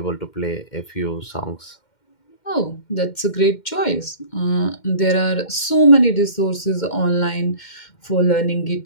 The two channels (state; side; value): late; right; 2.1 ms